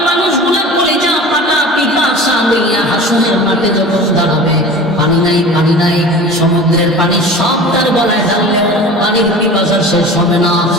মানুষগুলো কলিজা ফাটা পিপাসা লইয়া হাসরের মাঠে যখন দাঁড়াবে, পানি নাই পানি নাই, সমুদ্রের পানি সব তার গলায় ঢাললে পানির পিপাসা শেষ হবে না।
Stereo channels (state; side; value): normal; both; correlation 0.38